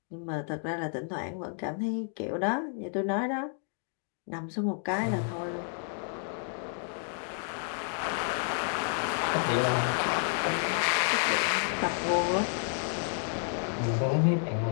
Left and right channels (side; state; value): right; silent; 57 dB below the other